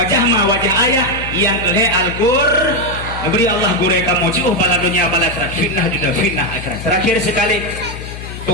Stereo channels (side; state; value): left; noise; hum, 10 dB below the sound